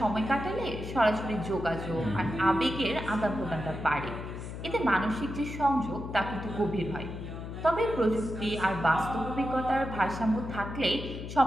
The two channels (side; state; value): left; noise; hum, 8 dB below the sound